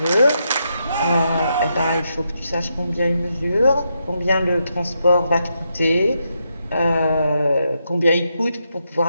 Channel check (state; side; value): inverted; both; correlation -0.82